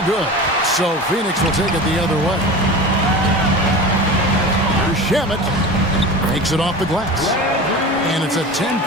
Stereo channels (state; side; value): normal; both; correlation 0.32